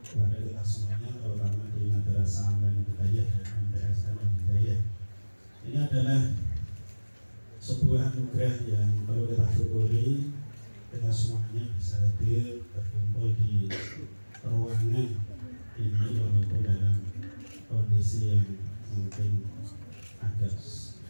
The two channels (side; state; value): both; inverted; correlation -1.00